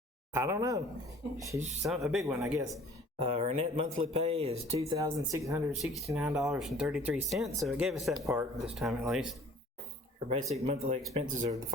I don't know. She's a big one, I guess. Her net monthly pay is $2,669.33. So it gave us that part this time at least. Her basic monthly expenses are the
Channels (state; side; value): normal; both; correlation 0.50